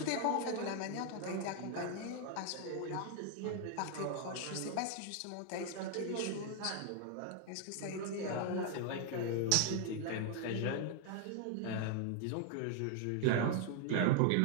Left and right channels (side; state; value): both; different; correlation 0.00